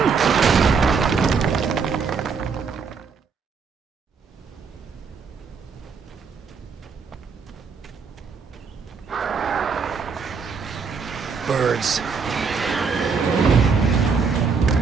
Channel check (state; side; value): quieter; left; 5.4 dB